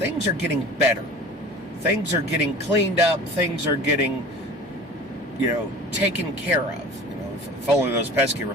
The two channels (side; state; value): both; normal; correlation 0.40